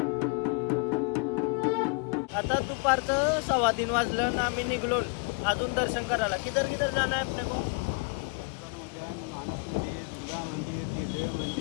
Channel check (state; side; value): quieter; right; 32.2 dB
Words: आता दुपारचं 3:15 वाजलं आणि आम्ही निघलो अजून दर्शन करायला. किधर किधर जाना है अपने को?